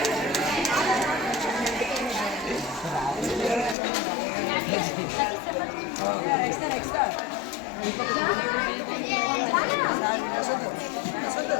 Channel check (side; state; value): right; drops out; at 3.8 s